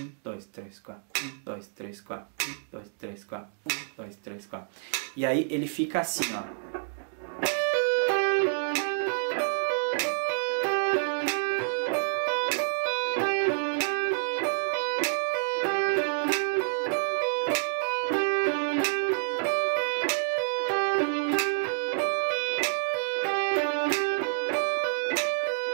2, 3, 4, 1, 2, 3, 4, 1, 2, 3, 4, 1, 2, 3, 4. E aí ele fica assim, ó.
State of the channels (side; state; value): left; silent; digital silence